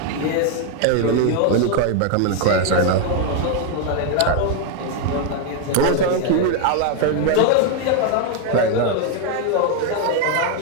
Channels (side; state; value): both; different; correlation 0.00